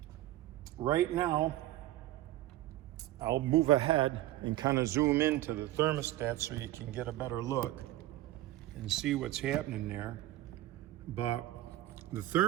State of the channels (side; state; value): left; quieter; 15.4 dB